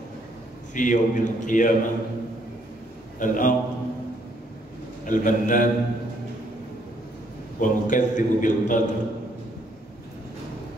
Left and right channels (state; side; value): normal; both; correlation 0.69